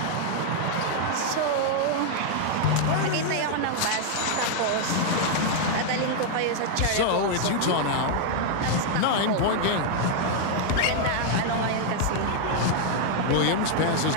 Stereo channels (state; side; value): different; both; correlation 0.00